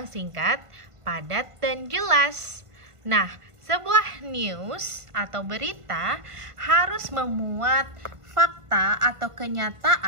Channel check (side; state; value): left; late; 1.5 ms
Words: singkat, padat, dan jelas. Nah, sebuah news atau berita harus memuat fakta atau